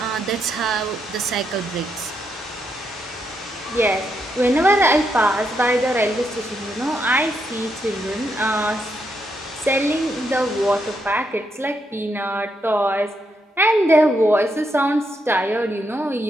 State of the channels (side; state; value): both; normal; correlation 0.80